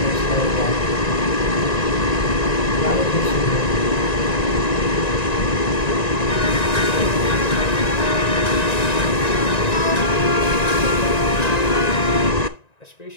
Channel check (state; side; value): late; right; 1.9 ms